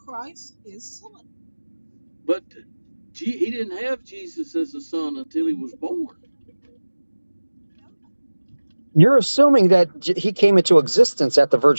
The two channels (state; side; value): inverted; both; correlation -1.00